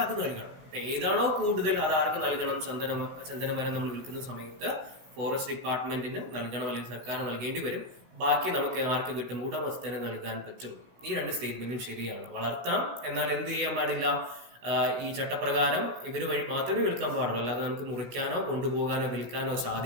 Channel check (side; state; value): left; late; 16 ms